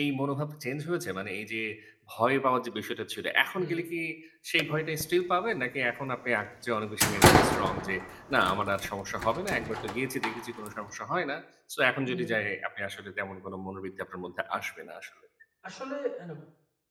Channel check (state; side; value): identical; both; correlation 1.00